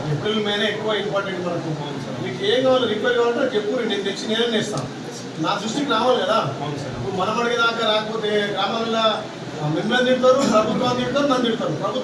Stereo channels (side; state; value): both; identical; correlation 1.00